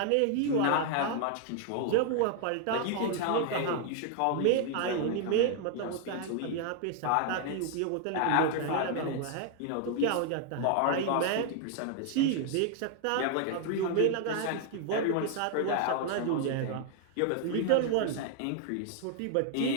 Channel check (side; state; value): both; different; correlation 0.00